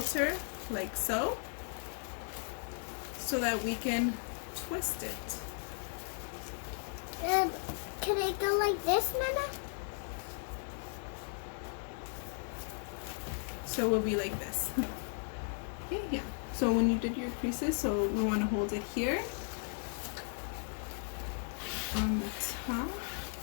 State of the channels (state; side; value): silent; right; 54 dB below the other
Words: like so that we can twist it. Can it go like this, Nana? So it will be like this. Okay, yeah. So when you did your creases, so we want to hold it here on the top.